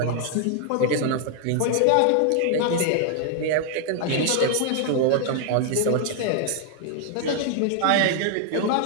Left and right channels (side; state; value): both; different; correlation 0.00